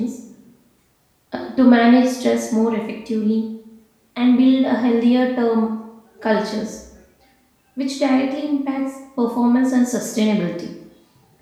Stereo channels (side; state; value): both; identical; correlation 1.00